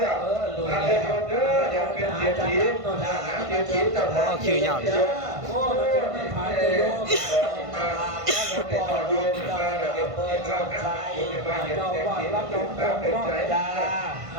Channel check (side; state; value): left; late; 1.5 ms